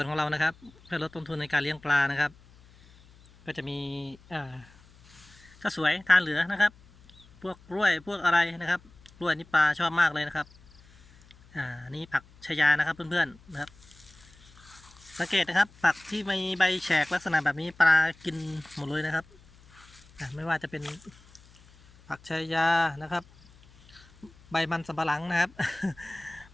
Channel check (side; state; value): left; noise; hum, 26 dB below the sound